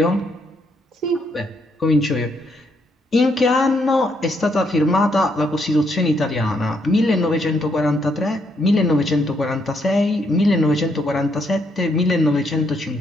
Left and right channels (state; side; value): normal; both; correlation 0.74